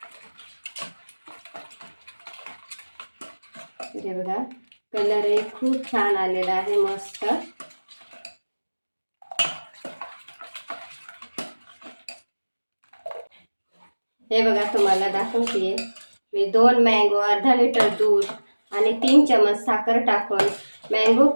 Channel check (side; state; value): both; inverted; correlation -1.00